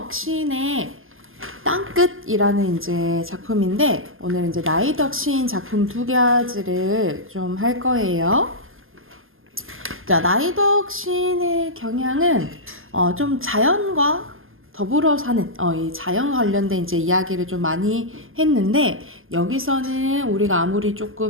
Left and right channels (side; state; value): left; late; 0.59 ms